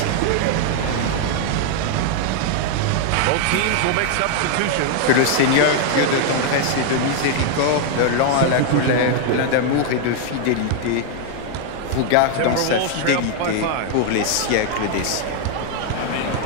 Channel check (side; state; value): both; different; correlation 0.00